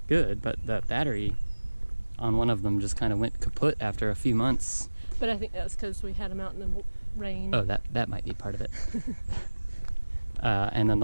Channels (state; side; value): inverted; both; correlation -1.00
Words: good, but the battery on one of them just kind of went kaput after a few months. But I think that's because we had them out in the rain. Oh, that might be part of it. And then